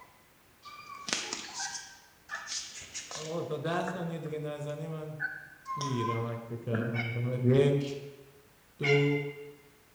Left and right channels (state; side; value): identical; both; correlation 1.00